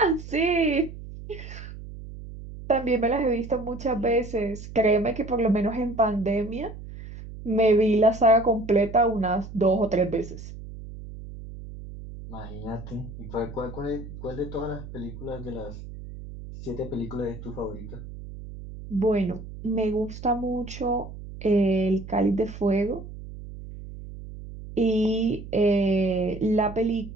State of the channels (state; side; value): noise; right; hum, 13 dB below the sound